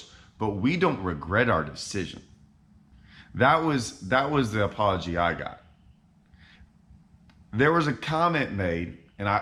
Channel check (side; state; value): both; identical; correlation 1.00